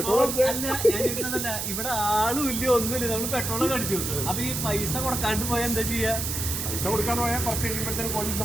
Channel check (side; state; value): right; noise; hiss, 3 dB below the sound